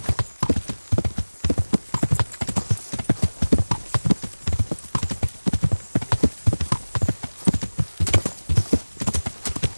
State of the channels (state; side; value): inverted; both; correlation -1.00